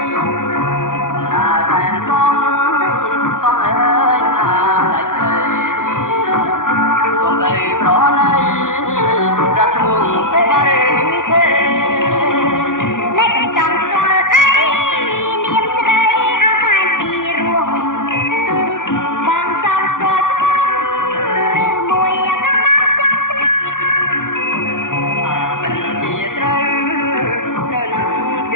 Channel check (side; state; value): right; late; 0.88 ms